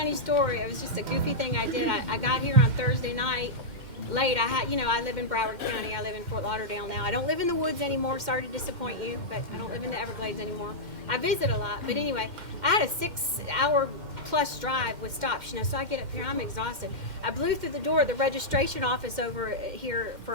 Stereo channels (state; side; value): late; left; 2.1 ms